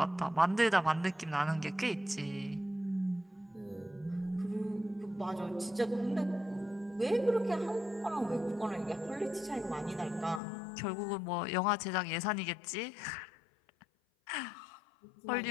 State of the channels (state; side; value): drops out; right; at 10.4 s